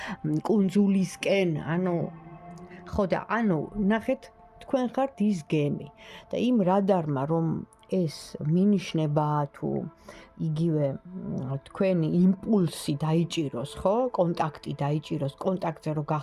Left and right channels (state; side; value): identical; both; correlation 1.00